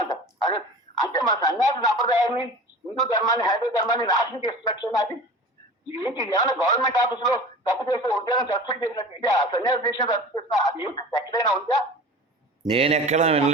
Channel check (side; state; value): both; normal; correlation 0.37